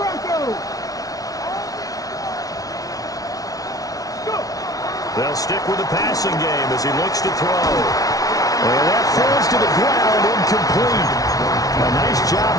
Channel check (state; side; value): late; right; 0.18 ms